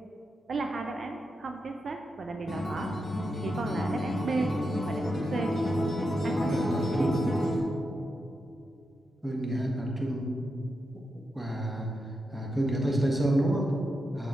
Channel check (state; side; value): normal; both; correlation 0.86